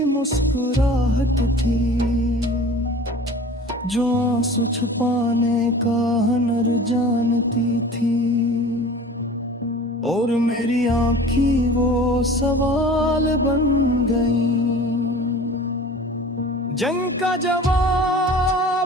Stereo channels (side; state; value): both; normal; correlation 0.42